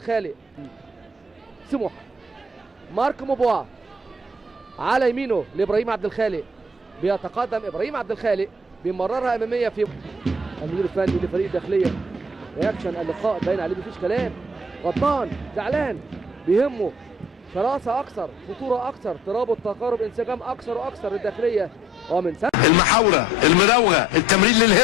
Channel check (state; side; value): normal; both; correlation 0.56